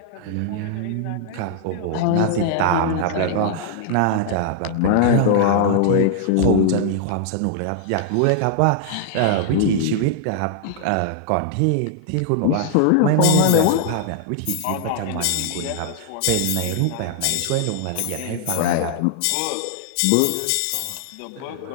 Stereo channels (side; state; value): both; different; correlation 0.00